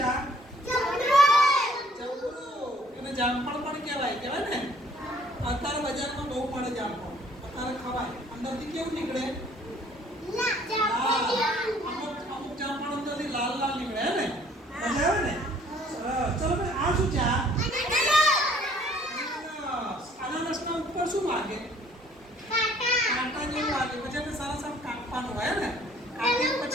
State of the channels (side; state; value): both; normal; correlation 0.59